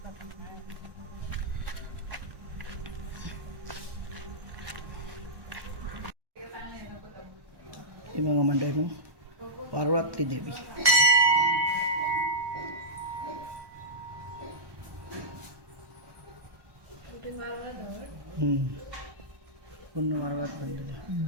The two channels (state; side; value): late; left; 1.2 ms